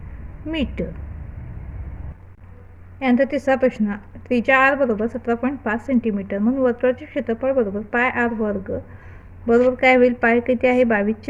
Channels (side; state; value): both; identical; correlation 1.00